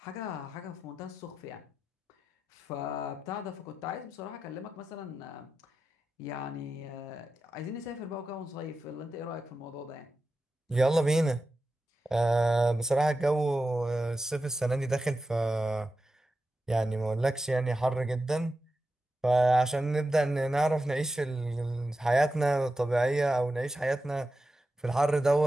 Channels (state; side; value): normal; both; correlation 0.91